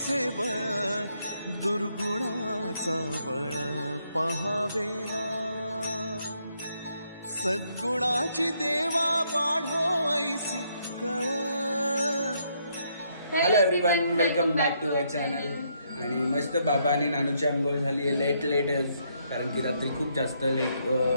बळ, दुर्गुणाचा बळ पहावेना। सद्गुणाची देवा वाढो ऐसी कळ। Hello everyone, welcome back to our channel. आणि मस्त बाबा आणि नानूची आंघोळ झाली आहे लेट कारण की रात्री खूप जास्त लेट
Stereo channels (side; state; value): both; inverted; correlation -0.74